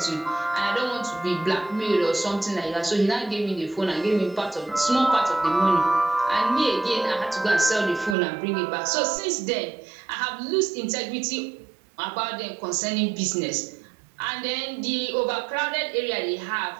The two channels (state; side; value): drops out; left; at 8.2 s